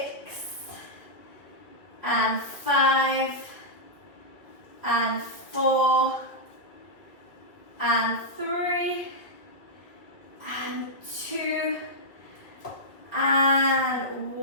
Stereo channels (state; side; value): late; right; 1.9 ms